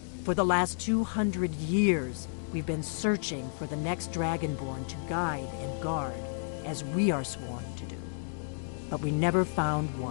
For the last 200 years, we've been searching for the next Dragonborn to guide and guard, as we are sworn to do. But we never found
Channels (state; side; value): silent; right; digital silence